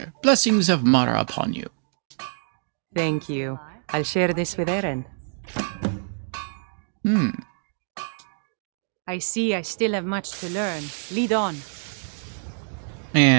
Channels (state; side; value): silent; left; digital silence